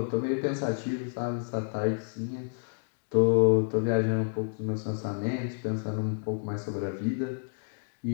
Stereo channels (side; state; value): right; silent; digital silence